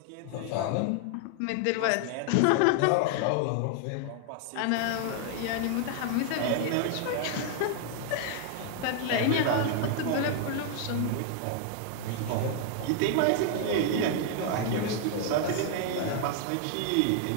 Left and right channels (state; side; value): different; both; correlation 0.00